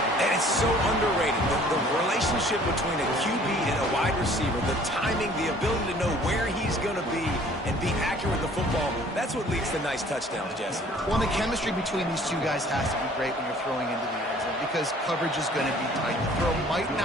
And it's so underrated. The relationship between a QB and a wide receiver, the timing, the ability to know where he's going to be and be accurate with the football, that's what leads to nice touchdowns, Jesse. Well, the chemistry between these two guys has to be great when you're throwing into the end zone, because coverage is going to be tight. The throw might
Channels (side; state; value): both; normal; correlation 0.54